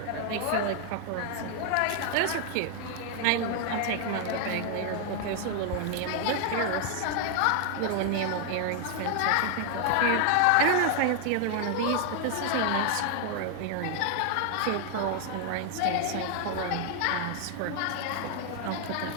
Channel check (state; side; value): different; both; correlation 0.00